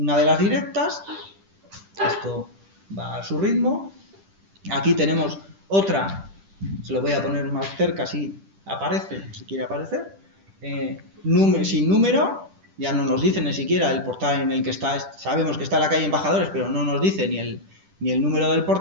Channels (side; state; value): left; late; 10 ms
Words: de las directas, esto va a su ritmo. Aquí tenemos otra, se lo voy a poner más cerca si aparece, si quiere aparecer, sin número, ya no nos dice ni siquiera el portal en el que está, sabemos que está en la calle Embajadores, pero no nos dice ni el número del